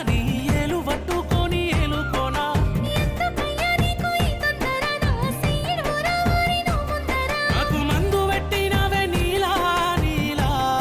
నీ ఏలు పట్టుకొని ఏలుకోనా ఎందుకయ్యా నీకు ఈ తొందర నా సీడు రావారి నువ్వు ముందర నాకు మందు పెట్టినవే నీలా నీలా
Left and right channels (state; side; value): identical; both; correlation 1.00